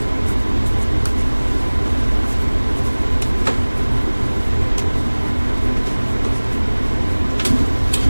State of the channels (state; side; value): inverted; both; correlation -1.00